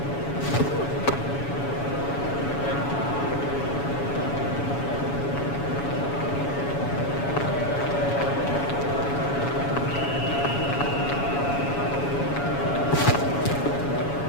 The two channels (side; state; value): right; late; 7.1 ms